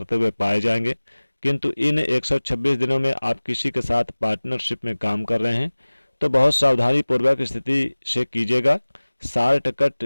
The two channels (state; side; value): inverted; both; correlation -1.00